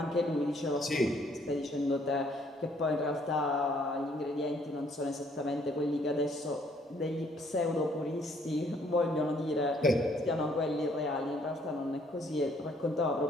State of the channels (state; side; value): normal; both; correlation 0.65